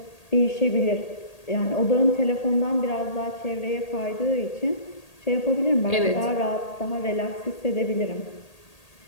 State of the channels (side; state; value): right; late; 1.8 ms